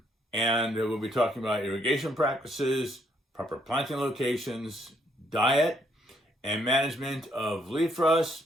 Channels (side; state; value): both; normal; correlation 0.70